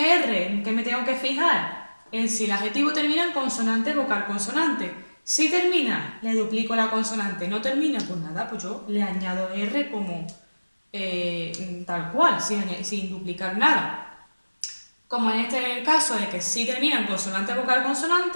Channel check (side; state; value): both; inverted; correlation -1.00